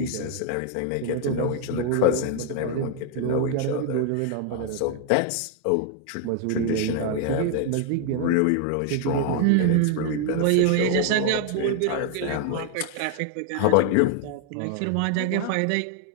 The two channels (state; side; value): different; both; correlation 0.00